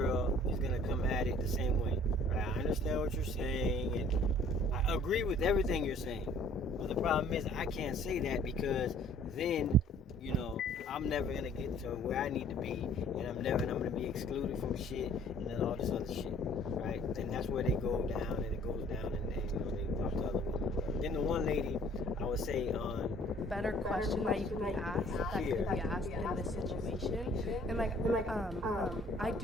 is gonna come at it the same way. Right? I understand what you're saying, and I agree with everything you're saying. But the problem is, I can't say that because then, I'm never gonna get to where I need to be, and I'm gonna be excluded from shit, and then all this other shit, right? And that's where they go down, and it goes down, and they talk to other women. Then the one lady, I would say on Better question that you can be asked that could be asked in this situation, and I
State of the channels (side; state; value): both; normal; correlation 0.55